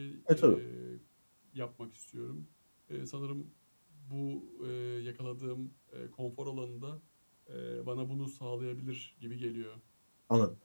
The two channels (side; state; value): both; inverted; correlation -1.00